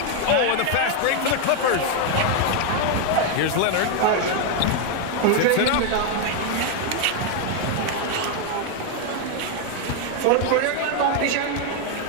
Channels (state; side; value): different; both; correlation 0.01